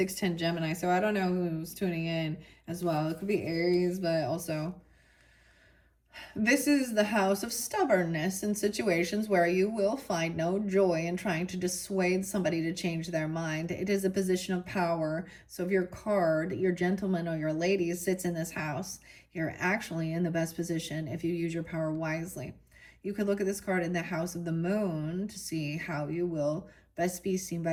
Gemini, so I don't know who's tuning in as well. It could be Aries, but also this is the house of stubbornness in situations where you will find no joy in trying to dissuade somebody to change their mind. It is a position of power. So if your card, your gentleman or your lady sits in this house, you're actually in the best position if you use your power wisely. You could look at this card in the house of the moon to see how you will best be seen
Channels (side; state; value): both; identical; correlation 1.00